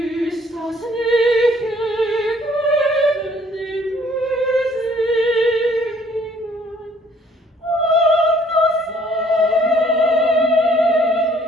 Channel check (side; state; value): both; normal; correlation 0.60